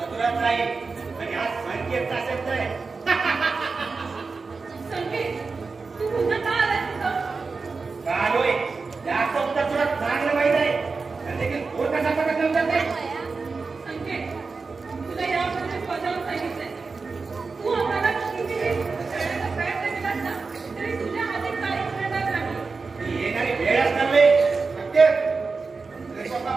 अधुराच राहील. आणि हा संकेतचा शब्द आहे. संकेत, तू पुन्हा का आलास इथं? चालोय याचं उत्तर तुला चांगलं माहित आहे. आणि देखील तो कसा प्रश्न विचारते? संकेत, तुला यापूर्वी स्वतःहून सांगितलंय. तू आम्हाला कितीही करण्याचा प्रयत्न केलास ना, तरी तुझ्या हाती काहीच मिळणार नाही. ही येणारी वेळच नव्हे. नक्कीच. तरी स्वतः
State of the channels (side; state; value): left; quieter; 4.4 dB